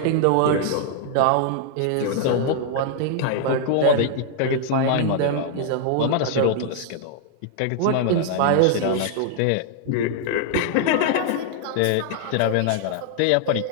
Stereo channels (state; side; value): different; both; correlation -0.01